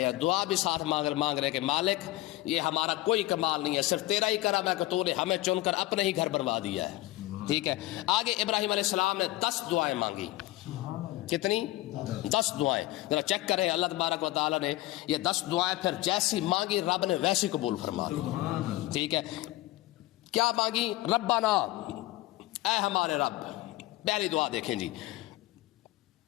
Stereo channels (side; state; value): right; quieter; 18.2 dB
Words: ہیں، دعا بھی ساتھ مانگ رہے ہیں کہ مالک یہ ہمارا کوئی کمال نہیں ہے، صرف تیرا ہی کرم ہے کہ تو نے ہمیں چن کر اپنے ہی گھر بنوا دیا ہے۔ ٹھیک ہے، آگے ابراہیم علیہ السلام نے 10 دعائیں مانگی، کتنی؟ 10 دعائیں۔ ذرا چیک کریں، اللہ تبارک و تعالیٰ نے یہ 10 دعائیں پھر جیسی مانگی رب نے ویسی قبول فرما لی۔ ٹھیک ہے، کیا مانگی؟ ربنا، اے ہمارے رب۔ پہلی دعا دیکھیں جی،